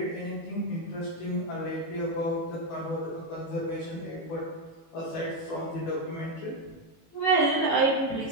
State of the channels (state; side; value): late; right; 18 ms